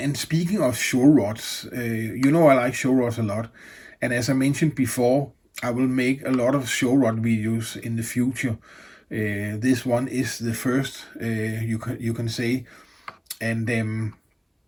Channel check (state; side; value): identical; both; correlation 1.00